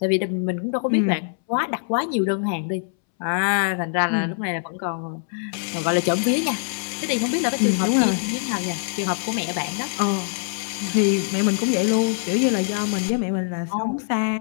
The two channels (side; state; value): right; silent; 63 dB below the other